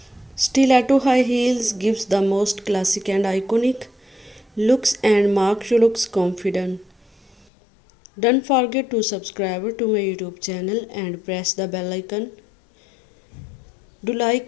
Stiletto high heels gives the most classic and iconic looks and makes you looks confident. Don't forget to subscribe to my YouTube channel and press the bell icon. Do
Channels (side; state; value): right; drops out; at 7.5 s